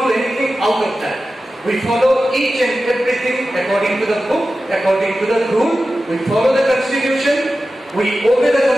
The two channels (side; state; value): both; normal; correlation 0.94